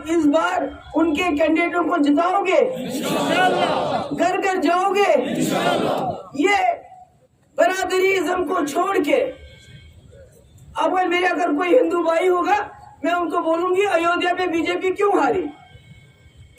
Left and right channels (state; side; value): identical; both; correlation 1.00